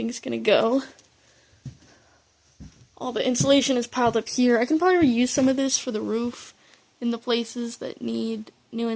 gonna go. All the insulation is piled up here. I can probably reuse some of this for the roof in the places that need new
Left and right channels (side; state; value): both; identical; correlation 1.00